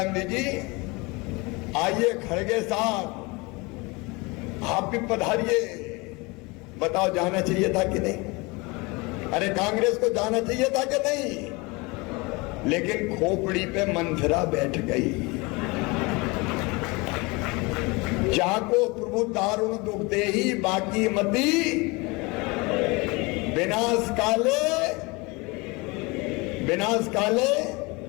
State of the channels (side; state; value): right; quieter; 25.9 dB